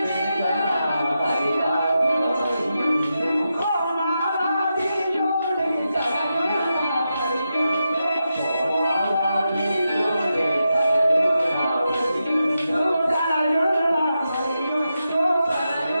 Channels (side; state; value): both; inverted; correlation -0.88